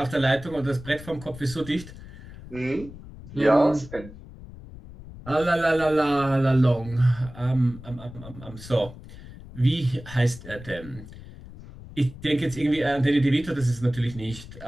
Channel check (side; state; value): left; noise; rumble, 16 dB below the sound